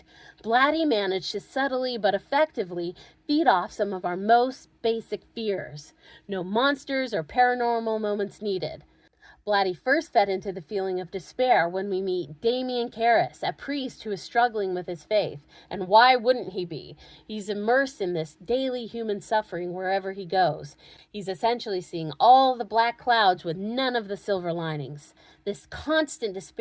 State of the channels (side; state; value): both; identical; correlation 1.00